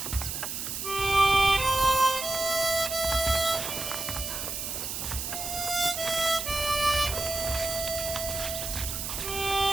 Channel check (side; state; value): right; noise; hiss, 4 dB below the sound